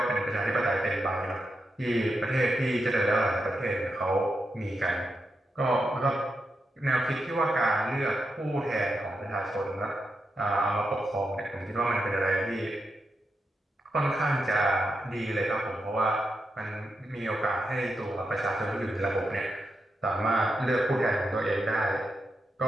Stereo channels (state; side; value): normal; both; correlation 0.86